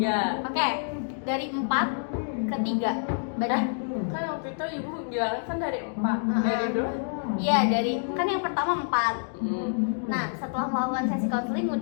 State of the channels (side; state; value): right; silent; digital silence